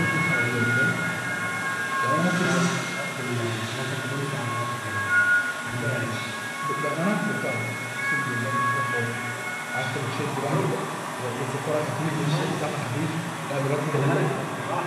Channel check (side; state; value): both; identical; correlation 1.00